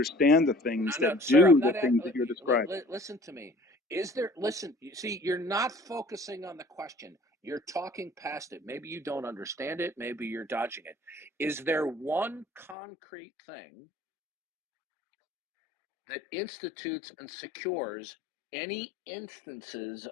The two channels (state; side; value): drops out; right; at 12.8 s